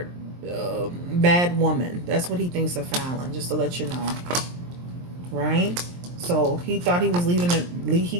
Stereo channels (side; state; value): left; late; 23 ms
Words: bad woman. That's what he thinks of Fallon. Just to let you know, right? So he thought he was leaving. He